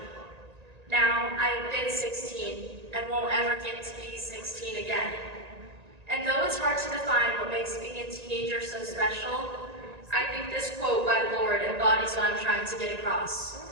Now, I have been 16 and won't ever get to be 16 again. And though it's hard to define what makes being a teenager so special, I think this quote by Lorde embodies what I'm trying to get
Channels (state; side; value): late; left; 1.9 ms